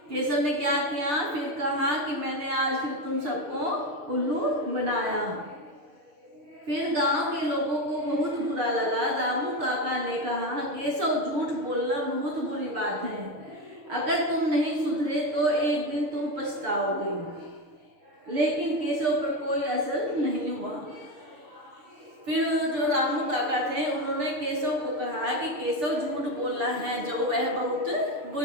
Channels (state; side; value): late; left; 6.6 ms